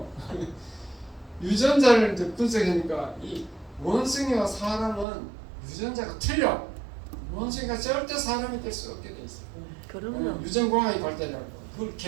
유전자를 분석하니까 이 원숭이와 사람은 유전자가 틀려. 원숭이가 절대 사람이 될 수 없게 돼 있어. 그럼요. 유전공학이 발달하고 그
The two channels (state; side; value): drops out; left; at 5.1 s